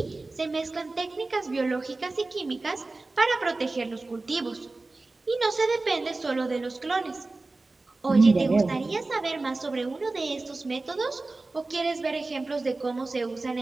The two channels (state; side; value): quieter; left; 3.3 dB